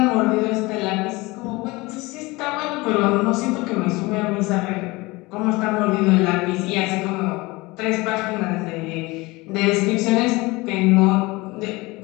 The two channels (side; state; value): right; quieter; 22.7 dB